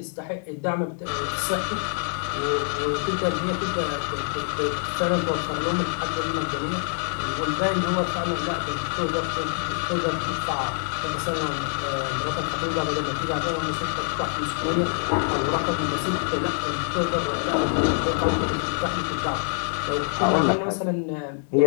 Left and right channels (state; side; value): silent; right; 58 dB below the other